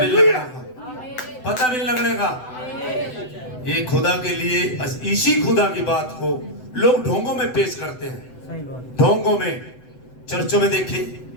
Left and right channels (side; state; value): right; late; 7.9 ms